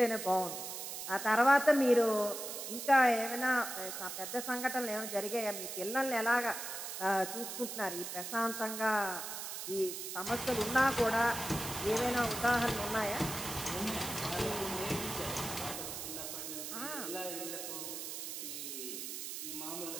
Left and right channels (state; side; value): noise; right; hiss, 6 dB below the sound